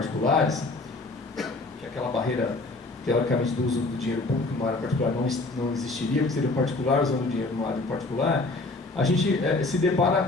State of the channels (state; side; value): quieter; right; 3.2 dB